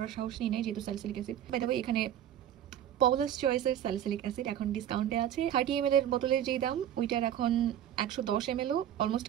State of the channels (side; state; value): left; quieter; 10.8 dB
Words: সাহস নিই নাই, যেহেতু salicylic acid. By the way, এখানে পলাস চয়েসের স্যালিসিলিক অ্যাসিড এখন ডিসকাউন্টে আছে। 30 ml এর বোতলের যেই দাম ওইটার এখন 110 ml অলমোস্ট